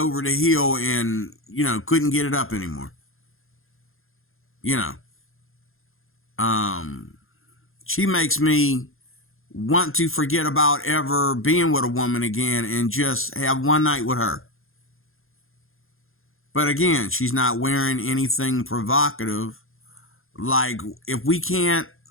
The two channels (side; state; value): right; late; 0.60 ms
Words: the hill and, couldn't get it up anymore. She makes me want to forget about ever being with a woman again and just have one night with her. But again, she's not wearing anything provocative. Like, if we can't